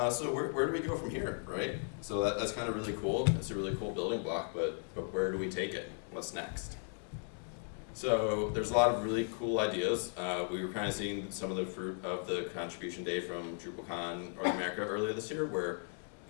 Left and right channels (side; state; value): right; silent; 54 dB below the other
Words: at. So where do we go from here, right? So that's kind of really cool. It's a really cool building block, but where do we take it? What's next? So there's a lot of really cool ideas. We were kind of seeing some of the fruit of the contribution day from DrupalCon or Einecker earlier this year, where